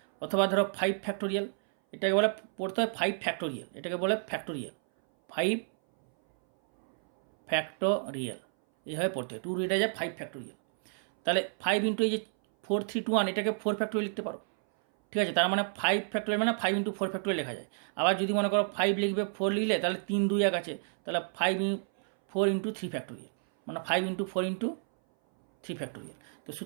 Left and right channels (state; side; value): silent; left; 57 dB below the other